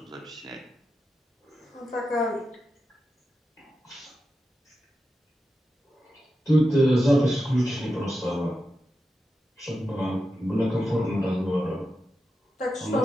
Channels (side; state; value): both; normal; correlation 0.89